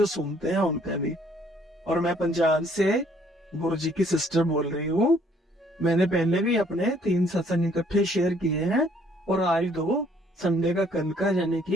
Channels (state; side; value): normal; both; correlation 0.63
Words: सुनते हैं उनका भी। और मैं पंजाब से गुरु जी की सिस्टर बोल रही हूँ। मैंने पहले भी अपने 3 सत्संग इकट्ठे शेयर किए हैं, और आज 2 संडे का कल का यानी